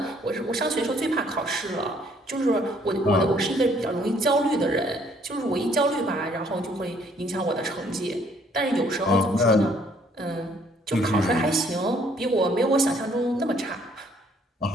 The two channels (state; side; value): normal; both; correlation 0.64